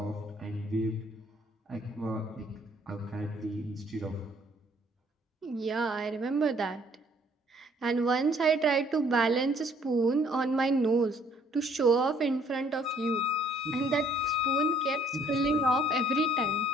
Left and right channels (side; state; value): both; normal; correlation 0.62